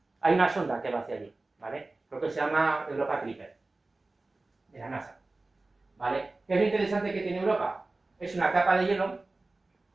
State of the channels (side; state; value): left; quieter; 3.2 dB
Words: Hay una sonda que va hacia allí, ¿vale? Creo que se llama Europa Clipper, de la NASA, ¿vale? ¿Qué es lo interesante que tiene Europa? Es una capa de hielo